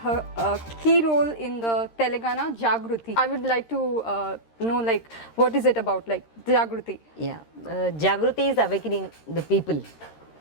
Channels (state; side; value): late; right; 13 ms